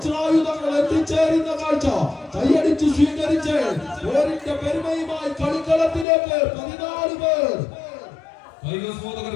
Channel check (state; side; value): drops out; right; at 6.1 s